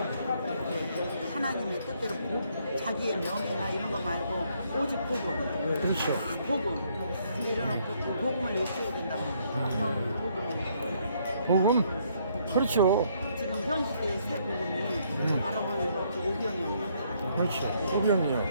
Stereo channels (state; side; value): inverted; both; correlation -0.70